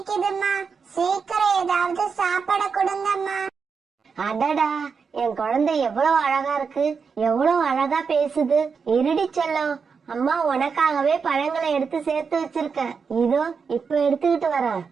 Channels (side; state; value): left; quieter; 5.7 dB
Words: சீக்கிரம் ஏதாவது சாப்பாட கொடுங்கம்மா. அடடா, என் குழந்தை எவ்வளவு அழகா இருக்கு, எவ்வளவு அழகா பேசுது. இருடி செல்லம், அம்மா உனக்காகவே பழங்களை எடுத்து சேர்த்து வச்சிருக்கேன், இதோ இப்ப எடுத்துக்கிட்டு வரேன்.